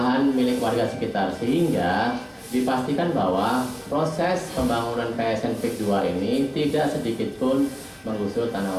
milik warga sekitar, sehingga dipastikan bahwa proses pembangunan PSN PIK 2 ini tidak sedikit pun menggusur tanah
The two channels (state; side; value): identical; both; correlation 1.00